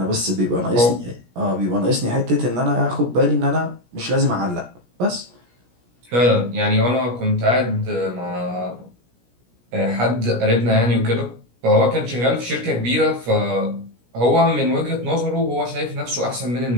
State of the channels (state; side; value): late; left; 17 ms